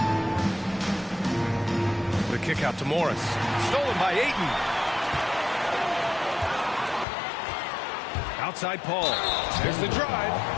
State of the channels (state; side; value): drops out; right; at 7.1 s